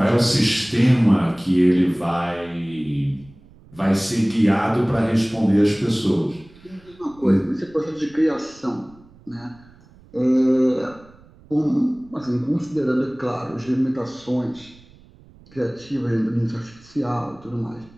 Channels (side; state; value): right; noise; rumble, 25 dB below the sound